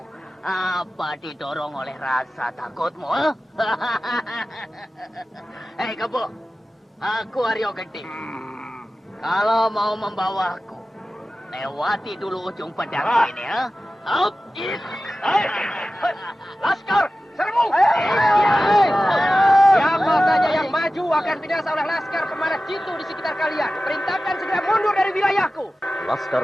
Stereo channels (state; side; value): normal; both; correlation 0.95